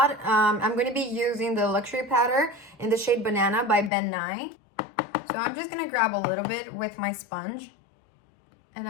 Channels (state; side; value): drops out; right; at 3.9 s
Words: I'm gonna be using the Luxury Powder in the shade Banana by Ben Nye. So I'm just gonna grab a little bit with my sponge, and